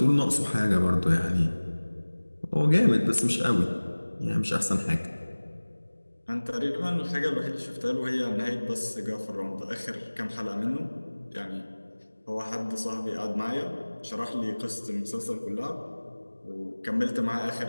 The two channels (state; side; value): inverted; both; correlation -1.00